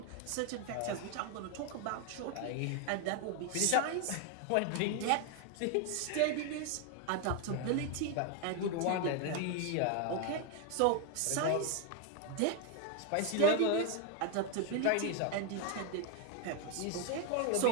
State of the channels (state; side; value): different; both; correlation 0.01